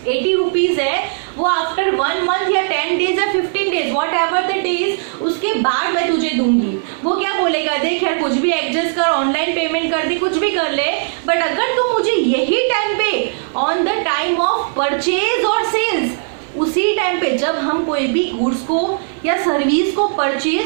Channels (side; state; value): left; silent; 56 dB below the other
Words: रुपीज है वो आफ्टर 1 मंथ या 10 डेज या 15 days what ever the days उसके बाद मैं तुझे दूंगी। वो क्या बोलेगा, देख यार कुछ भी एडजस्ट कर, ऑनलाइन पेमेंट कर दे, कुछ भी कर ले, बट अगर तू मुझे यही टाइम पे on the time of purchase और सेल्स, उसी टाइम पे जब हम कोई भी गुड्स को या सर्विस को